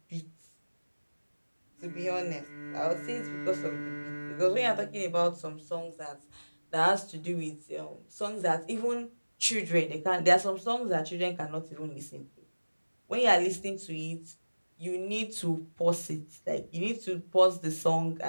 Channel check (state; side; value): inverted; both; correlation -1.00